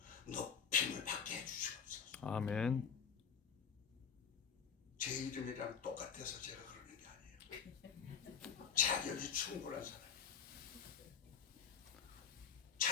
높임을 받게 해주시옵소서. 아멘. 제 이름이랑 똑같아서 제가 그러는 게 아니에요. 자격이 충분한 사람이에요.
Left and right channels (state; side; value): quieter; right; 7.1 dB